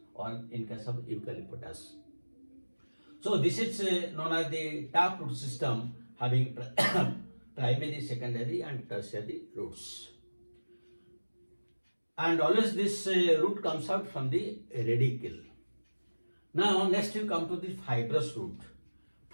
or in case of eucalyptus. So this is known as the taproot system, having primary, secondary and tertiary roots. And always this root comes out from the radicle. Now next you come to the fibrous root.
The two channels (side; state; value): both; inverted; correlation -1.00